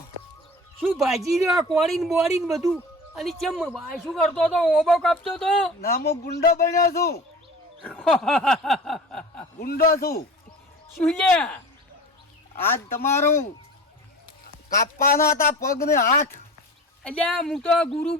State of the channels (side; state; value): both; normal; correlation 0.38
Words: શું ભાજી રહ્યો કોળીને બોળીને બધું અને ચમ આ શું કરતો તો ઓબો કાપતો તો ના હું ગુંડો બન્યો છું ગુંડો છું શું લ્યા આજ તમારું કાપવાના હતા પગ ને હાથ અલ્યા હું તો ગુરુ